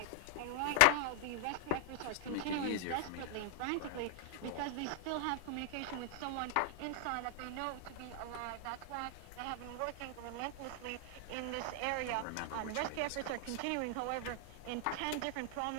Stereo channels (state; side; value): different; both; correlation 0.00